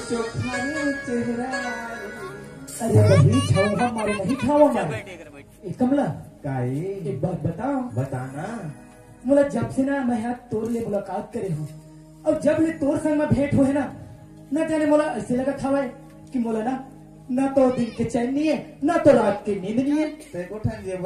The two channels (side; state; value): both; identical; correlation 1.00